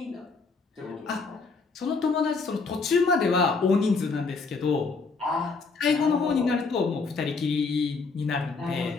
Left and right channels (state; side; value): quieter; right; 4.3 dB